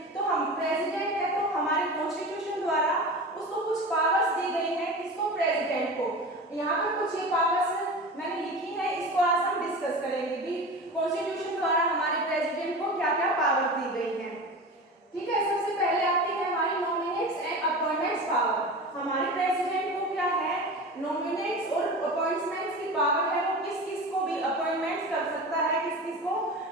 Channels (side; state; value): both; normal; correlation 0.31